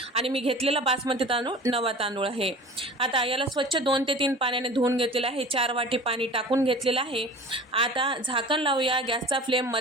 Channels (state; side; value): normal; both; correlation 0.39